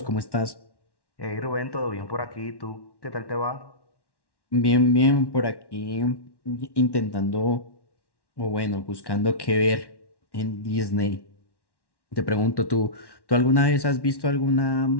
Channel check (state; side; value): late; right; 1.1 ms